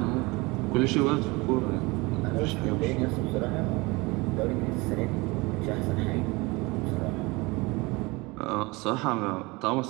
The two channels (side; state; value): left; quieter; 24.3 dB